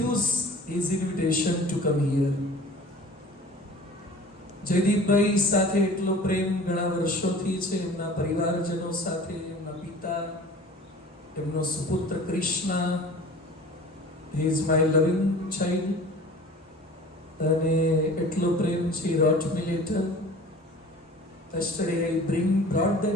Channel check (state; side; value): normal; both; correlation 0.43